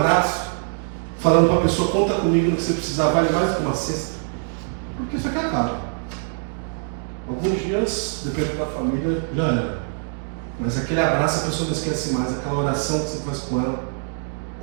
falando para a pessoa, conta comigo no que você precisar, vale mais do que uma cesta? Porque isso aqui acaba. Alguns dias, dependendo da família, já era. Mas aquele abraço a pessoa não esquece mais. Aquela oração que você faz com ela,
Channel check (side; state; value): left; silent; 60 dB below the other